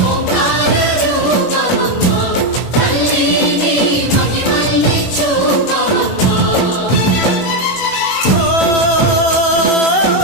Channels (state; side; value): late; right; 21 ms